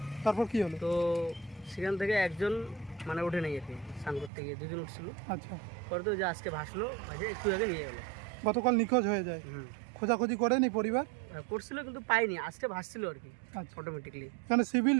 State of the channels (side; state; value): left; drops out; at 4.3 s